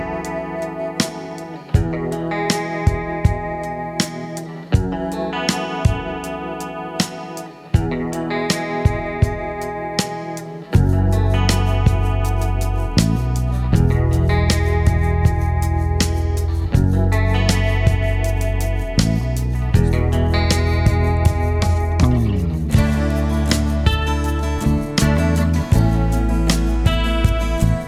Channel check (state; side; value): identical; both; correlation 1.00